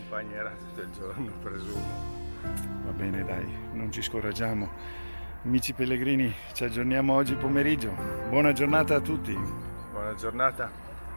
tutto il giorno, presumo. Va bene, dai, non ci scoraggiamo. Amici pellegrini, ci aggiorniamo oggi pomeriggio. Buona giornata a tutti. Buona giornata.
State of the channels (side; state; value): both; inverted; correlation -1.00